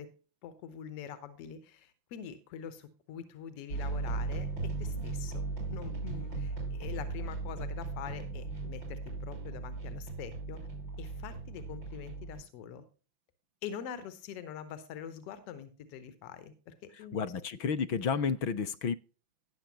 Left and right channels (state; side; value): late; right; 6.1 ms